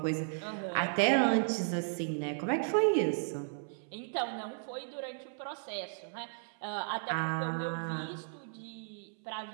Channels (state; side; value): silent; left; 55 dB below the other